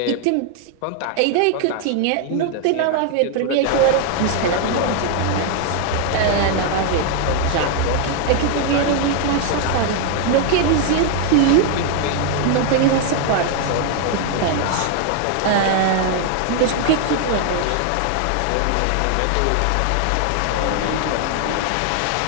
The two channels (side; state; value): both; different; correlation 0.00